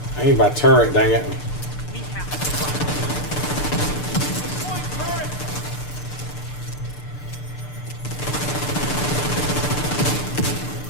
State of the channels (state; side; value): late; right; 6.7 ms